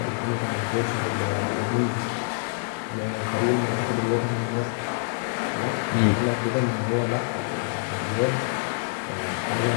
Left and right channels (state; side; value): silent; right; digital silence